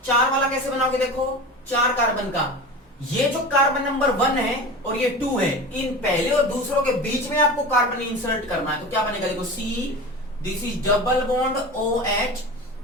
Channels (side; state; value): both; normal; correlation 0.32